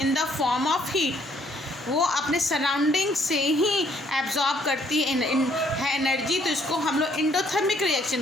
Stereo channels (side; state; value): both; normal; correlation 0.66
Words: in the form of heat. वो अपने सराउंडिंग से ही एब्जॉर्ब करती है एनर्जी, तो इसको हम लोग एंडोथर्मिक